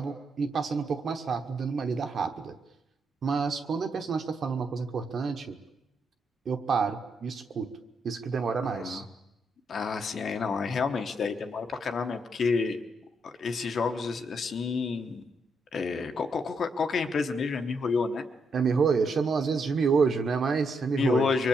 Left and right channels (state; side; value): normal; both; correlation 0.78